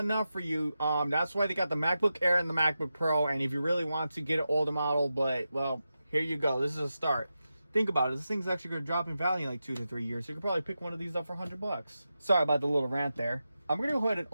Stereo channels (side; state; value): both; inverted; correlation -0.91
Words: enough for you, that's why they got the MacBook Air and the MacBook Pro. And if you really want to get an older model, but, well, here you go. This is a start. Think about it. This thing's actually going to drop in value in like 2 to 3 years. So you could probably pick one of these up for $100. Sorry about the little rant there. I'm going to go ahead and